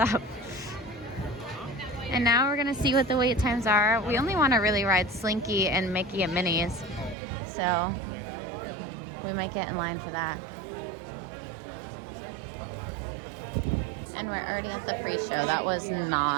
And now we're gonna see what the wait times are. We only want to really ride Slinky and Mickey and Minnie's, so we might get in line for that. And we're already at the pre-show. That was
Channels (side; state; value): left; drops out; at 7.2 s